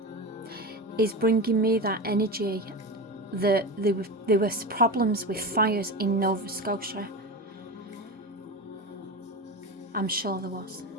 is bringing me that energy that there was problems with fires in Nova Scotia. I'm sure there was.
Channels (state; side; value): normal; both; correlation 0.23